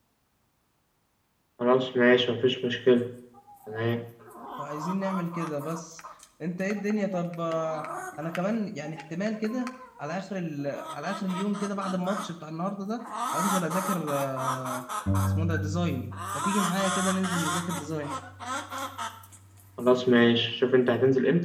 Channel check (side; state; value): both; identical; correlation 1.00